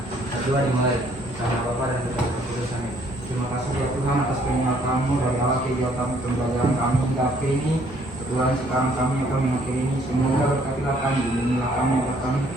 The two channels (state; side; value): normal; both; correlation 0.63